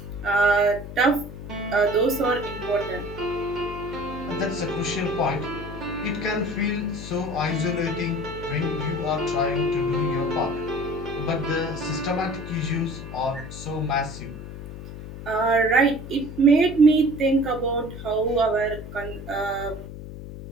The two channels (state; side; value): noise; left; hum, 11 dB below the sound